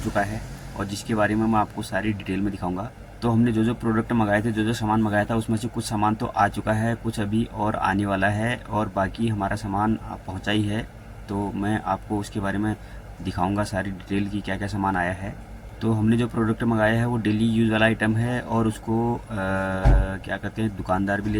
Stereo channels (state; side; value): identical; both; correlation 1.00